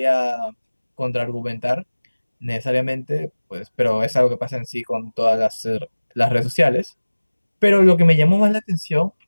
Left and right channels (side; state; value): both; inverted; correlation -1.00